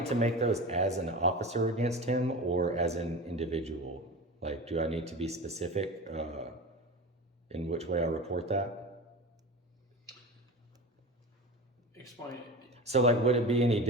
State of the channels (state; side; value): normal; both; correlation 0.30